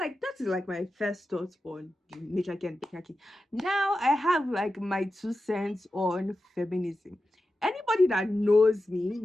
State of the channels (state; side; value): normal; both; correlation 0.92